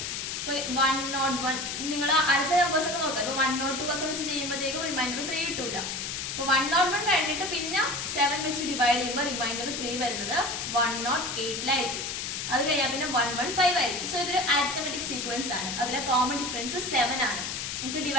ഇപ്പൊ 101 നിങ്ങൾ അടുത്ത നമ്പേഴ്സ് ഒക്കെ നോക്കാം. ഇപ്പൊ 102 ഒക്കെ വെച്ച് ചെയ്യുമ്പോഴത്തേക്കും റിമൈൻഡർ 3 കിട്ടൂല. അപ്പൊ 101 കഴിഞ്ഞിട്ട് പിന്നെ 7 വെച്ച് ഡിവൈഡ് ചെയ്യുമ്പോൾ റിമൈൻഡർ 3 വരുന്നത് 108 അത് കഴിഞ്ഞാൽ പിന്നെ 115 ആയിരിക്കും. സോ ഇതൊരു അരിത്തമെറ്റിക് സീക്വൻസ് ആണ്. അതിലെ കോമൺ ഡിഫറൻസ് 7 ആണ്. നമുക്ക്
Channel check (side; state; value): left; noise; hiss, 4 dB below the sound